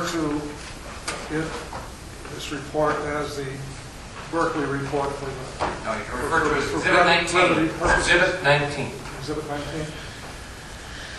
to this report as the Berkeley report for the... No, you can refer to it as for Exhibit brevity 19. purposes. Exhibit 19. Exhibit 19.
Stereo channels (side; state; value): both; identical; correlation 1.00